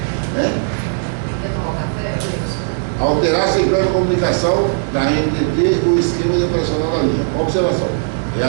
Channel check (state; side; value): silent; left; digital silence